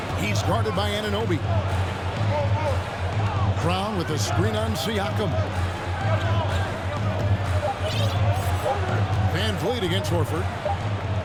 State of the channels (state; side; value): identical; both; correlation 1.00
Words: He's guarded by Anunoby. Brown with a screen on Siakam. Van Vliet against Horford.